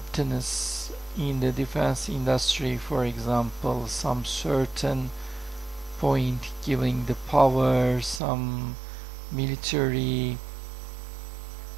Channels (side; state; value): left; drops out; at 8.2 s